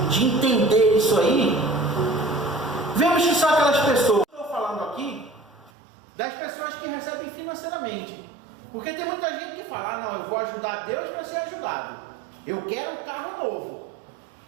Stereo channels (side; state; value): left; drops out; at 5.7 s